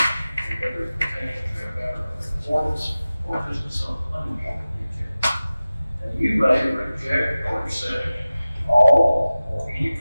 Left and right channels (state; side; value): inverted; both; correlation -0.97